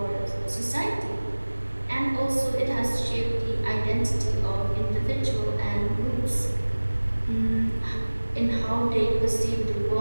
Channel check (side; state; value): both; inverted; correlation -1.00